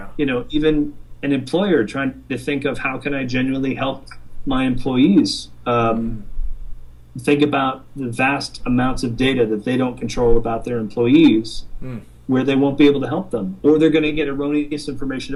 Even an employer trying to think of how can I genuinely help my employees think about the vast amounts of data that they don't control about their employees, where they won't be able to help them, or they're going to get erroneous information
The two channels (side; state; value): both; identical; correlation 1.00